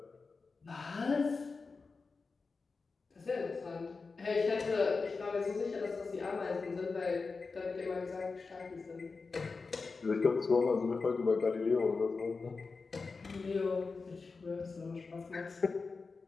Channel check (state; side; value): quieter; right; 4.4 dB